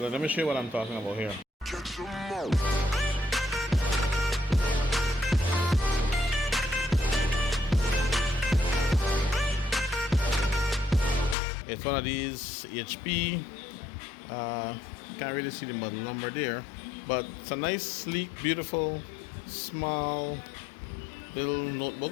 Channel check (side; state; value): right; drops out; at 11.4 s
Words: let me show you what I'm talking about here. It's one of these HP. Can't really see the model number there, but it's a nice, sleek, beautiful, small little